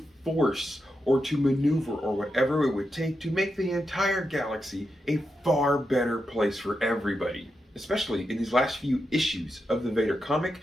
force or to maneuver or whatever it would take to make the entire galaxy a far better place for everybody. Especially in these last few issues of the Vader comic,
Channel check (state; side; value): normal; both; correlation 0.87